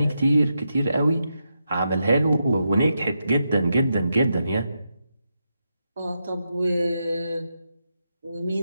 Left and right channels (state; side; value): inverted; both; correlation -0.85